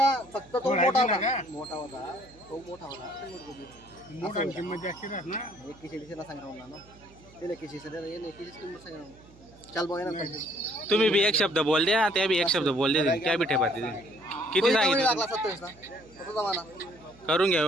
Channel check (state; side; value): noise; right; hum, 25 dB below the sound